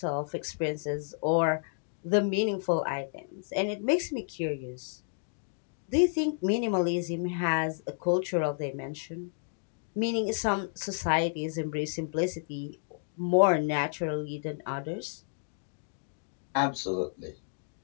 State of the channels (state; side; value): silent; right; digital silence